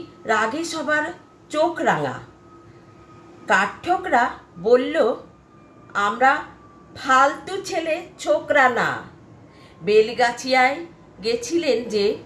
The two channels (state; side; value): identical; both; correlation 1.00